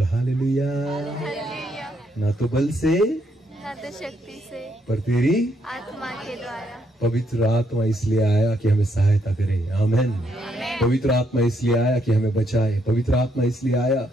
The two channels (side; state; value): both; normal; correlation 0.74